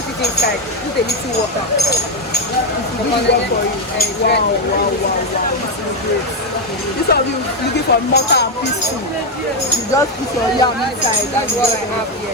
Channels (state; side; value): normal; both; correlation 0.06